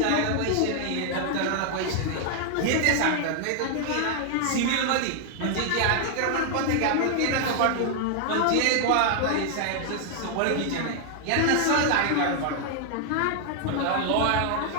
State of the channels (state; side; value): different; both; correlation 0.00